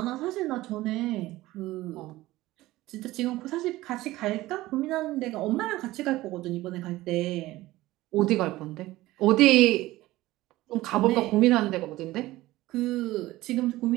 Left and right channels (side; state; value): left; quieter; 17.5 dB